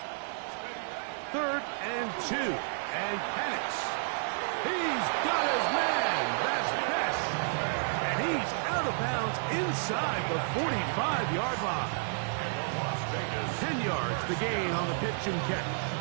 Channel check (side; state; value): left; silent; digital silence